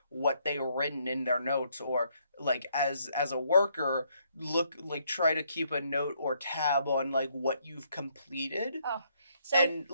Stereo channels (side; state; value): both; inverted; correlation -0.71